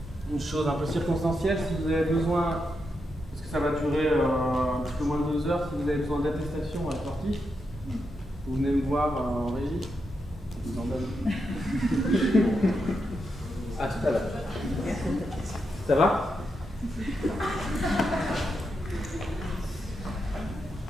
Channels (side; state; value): both; normal; correlation 0.84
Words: une chose un peu circonstancielle, si vous avez besoin, parce que ça va durer un petit peu moins de 2 heures, si vous avez besoin d'attestation à la sortie, vous venez me voir en régie. Je vous en donne. À tout à l'heure. Ça va?